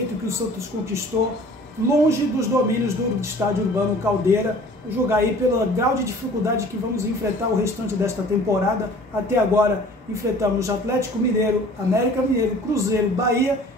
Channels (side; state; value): both; normal; correlation 0.48